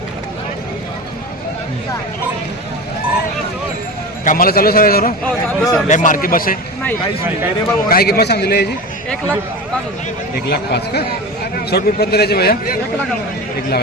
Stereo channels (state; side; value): normal; both; correlation 0.28